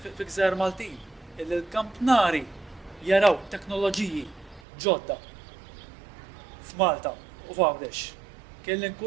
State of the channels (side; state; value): left; drops out; at 4.6 s